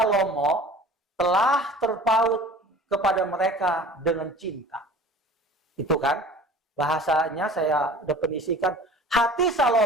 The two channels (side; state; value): both; normal; correlation 0.43